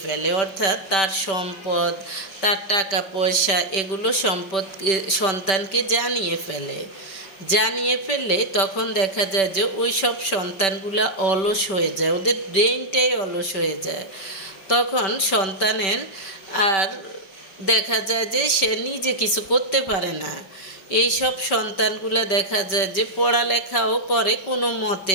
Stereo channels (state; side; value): late; right; 5.2 ms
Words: ফেলে, অর্থাৎ তার সম্পদ, তার টাকা পয়সা এগুলো সন্তানকে জানিয়ে ফেললে তখন দেখা যায় যে ওই সব সন্তানগুলা অলস হয়ে যায়, ওদের ব্রেনটাই অলস হয়ে যায়। তখন সন্তানের আর দেখা যায় যে সে নিজে কিছু করতে পারে না। এইসব সন্তানগুলা দেখা যায় যে পড়ালেখাও করে, কোনো মতে